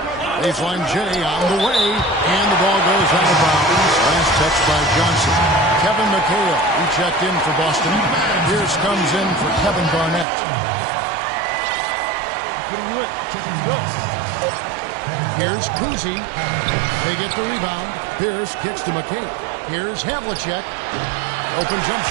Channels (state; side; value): drops out; left; at 10.2 s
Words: Baseline J on the way, and the ball goes out of bounds. Last touch by Johnson. Kevin McHale, he checked in for Boston. Pierce comes in for Kevin Garnett. I'm putting you in. Go. Here's Kuzi. They get the rebound. Pierce kicks to McHale. Here's Havlicek. Open jump